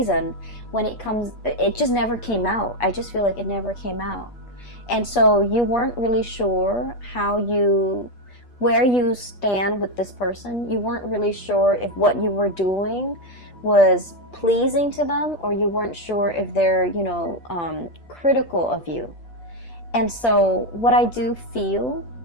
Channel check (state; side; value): late; right; 8.4 ms